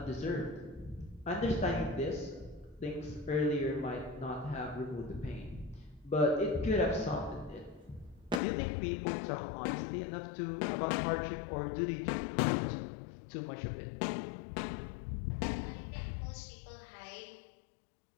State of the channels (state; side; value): drops out; right; at 8.4 s